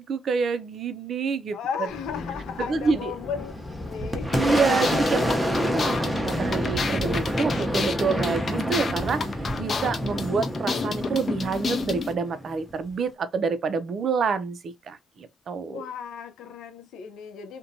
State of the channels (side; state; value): both; normal; correlation 0.78